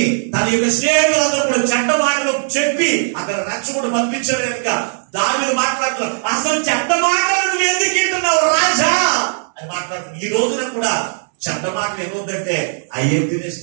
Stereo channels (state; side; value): silent; left; 68 dB below the other